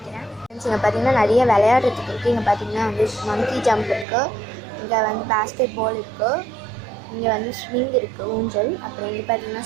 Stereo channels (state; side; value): drops out; left; at 4.0 s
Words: ஃப்ரெண்ட்ஸ், இங்கே பார்த்தீங்கன்னா நிறைய விளையாடுறதுக்கு இருக்குது. இங்கே பார்த்தீங்கன்னா வந்து மங்கி ஜம்ப் இருக்குது, இங்கே வந்து பேஸ்கெட் பால் இருக்குது, இங்கே வந்து ஸ்விங் இருக்குது, ஊஞ்சல். அப்புறம் இங்கே பார்த்தீங்கன்னா